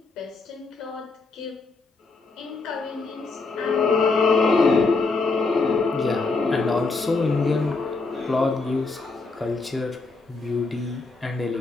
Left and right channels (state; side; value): quieter; right; 3.8 dB